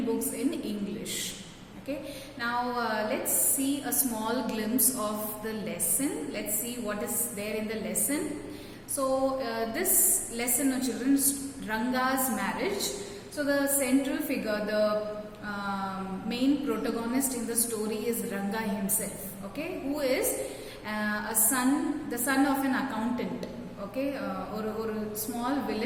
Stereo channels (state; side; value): identical; both; correlation 1.00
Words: books in English. Okay, now let's see a small glimpse of the lesson. Let's see what is there in the lesson. So this lesson, children, is Ranga's marriage. So the central figure, the main protagonist in the story is Ranga himself. Okay, who is the son of an accountant. Okay, or a small